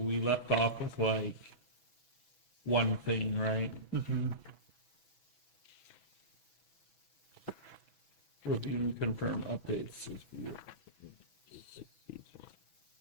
we left off with like one thing, right? Review and confirm updates.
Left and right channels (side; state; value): right; late; 6.1 ms